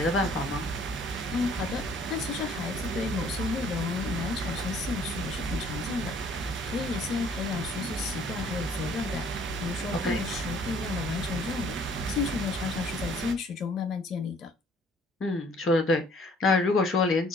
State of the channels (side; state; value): both; normal; correlation 0.58